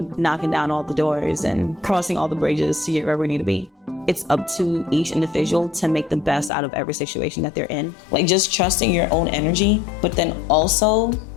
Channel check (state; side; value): drops out; right; at 6.5 s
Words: knocking down all the doors and crossing all the bridges to get where we need to be. It's up to each individual to make the best out of every situation that they're in. Like just trusting your own energy, but then also